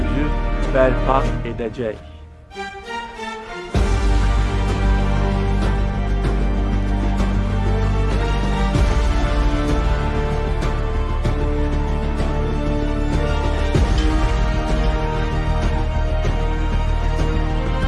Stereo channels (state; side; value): identical; both; correlation 1.00